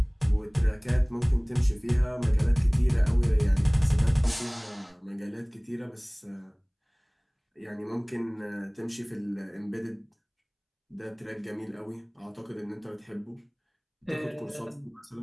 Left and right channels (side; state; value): both; identical; correlation 1.00